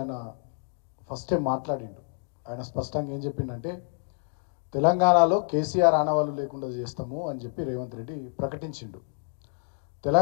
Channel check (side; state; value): right; silent; 59 dB below the other